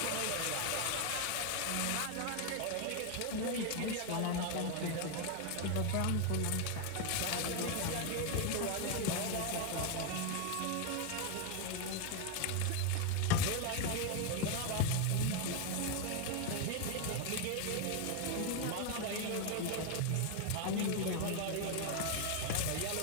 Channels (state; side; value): different; both; correlation 0.01